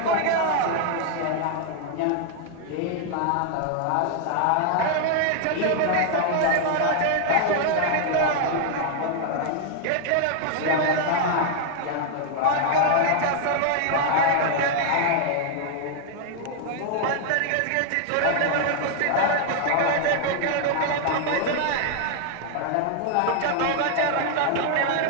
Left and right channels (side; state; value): both; different; correlation 0.00